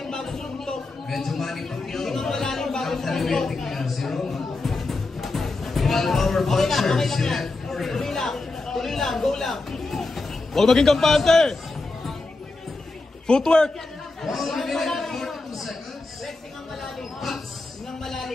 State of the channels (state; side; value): quieter; right; 3.3 dB